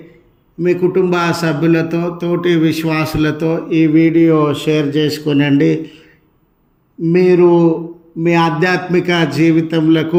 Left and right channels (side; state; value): both; identical; correlation 1.00